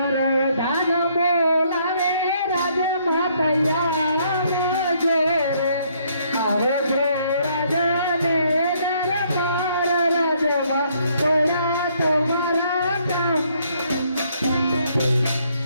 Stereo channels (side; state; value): both; inverted; correlation -0.68